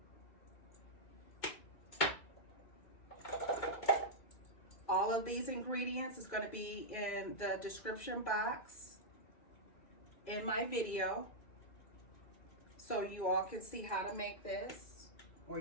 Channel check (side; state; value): right; late; 2.7 ms